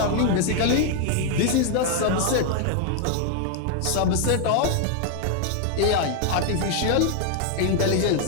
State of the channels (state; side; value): different; both; correlation 0.00